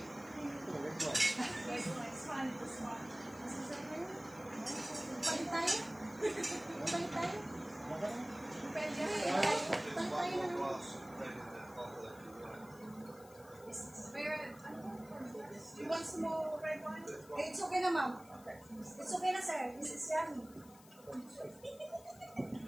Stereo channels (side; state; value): left; noise; hiss, 23 dB below the sound